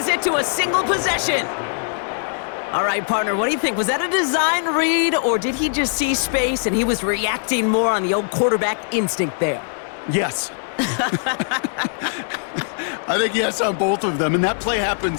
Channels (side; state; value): right; silent; digital silence